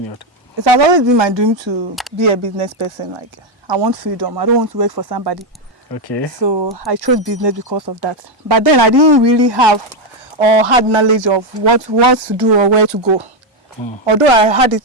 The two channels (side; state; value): both; normal; correlation 0.06